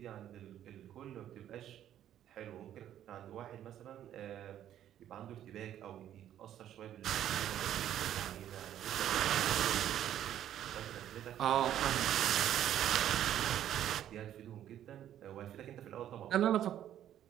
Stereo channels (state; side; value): quieter; left; 11.2 dB